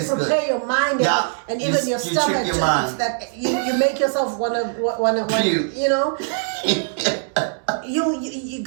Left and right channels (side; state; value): left; silent; digital silence